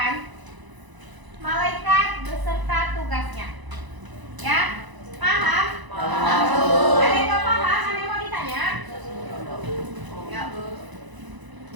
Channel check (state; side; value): late; left; 1.0 ms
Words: malaikat beserta tugasnya. Ya, paham? Paham. Ada yang nggak paham? Ada yang mau ditanya? Ya, Bu.